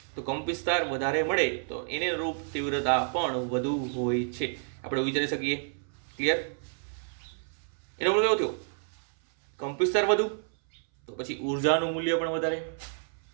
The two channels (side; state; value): left; silent; 58 dB below the other